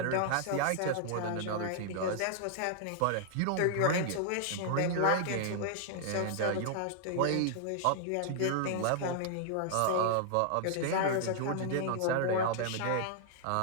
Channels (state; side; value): different; both; correlation 0.00